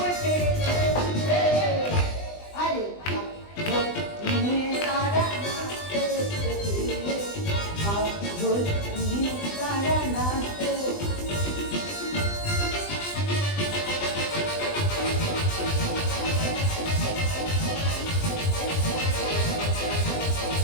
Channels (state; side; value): late; right; 20 ms